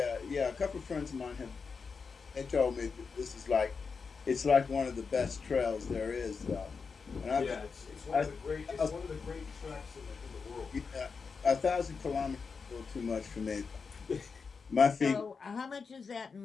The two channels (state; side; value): quieter; right; 5.2 dB